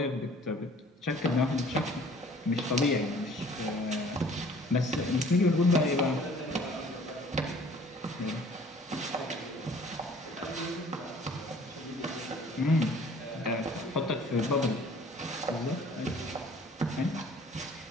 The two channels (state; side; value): normal; both; correlation 0.52